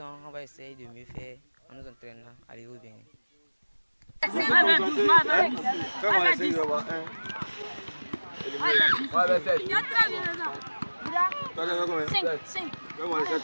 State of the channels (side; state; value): both; inverted; correlation -1.00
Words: on va essayer de mieux faire en nous entraînant à aller au Bénin.